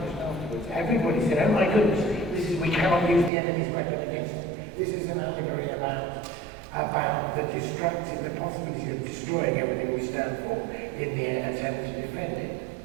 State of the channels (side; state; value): left; drops out; at 3.3 s